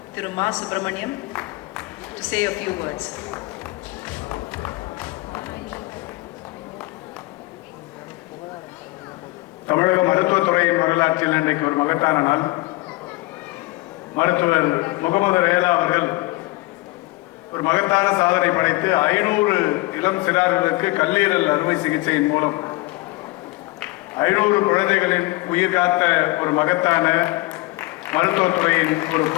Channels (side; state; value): right; quieter; 21.4 dB